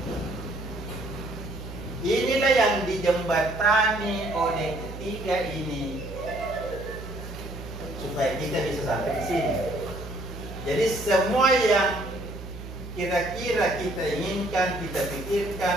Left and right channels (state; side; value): noise; right; hum, 11 dB below the sound